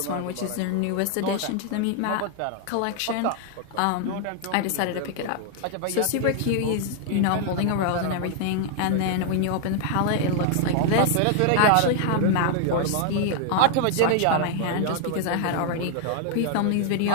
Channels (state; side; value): different; both; correlation 0.00